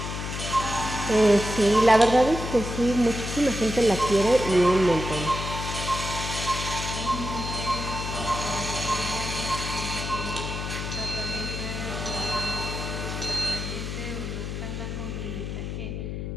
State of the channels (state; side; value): noise; left; hum, 5 dB below the sound